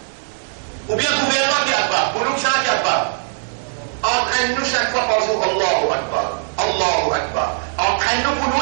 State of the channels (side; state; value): left; silent; 66 dB below the other